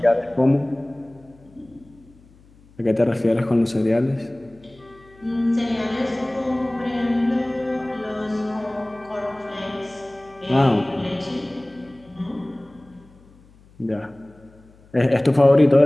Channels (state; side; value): noise; left; hum, 27 dB below the sound